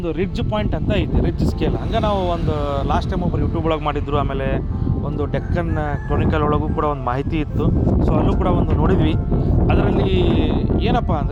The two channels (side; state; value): both; identical; correlation 1.00